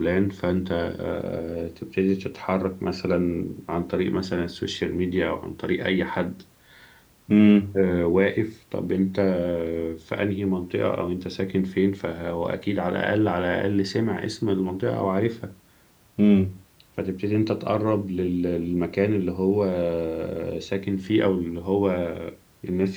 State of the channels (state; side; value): identical; both; correlation 1.00